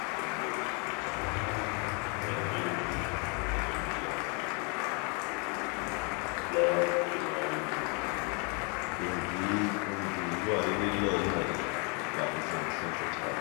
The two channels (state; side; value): quieter; right; 34.4 dB